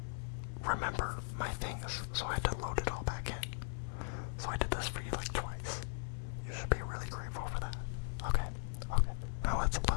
remember my things, so I had to load it all back in. So I did this for you like twice. You should be really grateful for that. Okay. Now let's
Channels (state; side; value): silent; right; digital silence